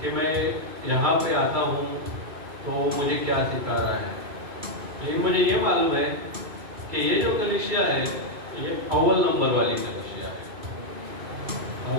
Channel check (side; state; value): left; late; 2.5 ms